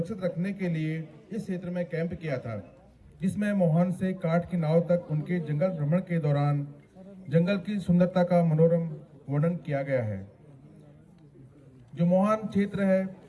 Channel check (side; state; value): both; identical; correlation 1.00